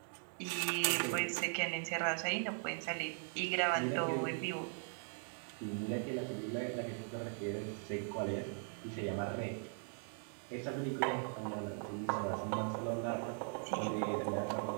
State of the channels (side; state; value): left; silent; 51 dB below the other